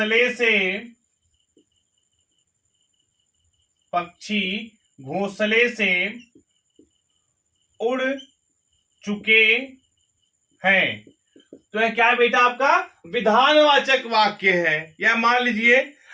से उड़ चुके हैं। तो यह क्या है बेटा? आपका विधानवाचक वाक्य है। या मान लीजिए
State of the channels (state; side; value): identical; both; correlation 1.00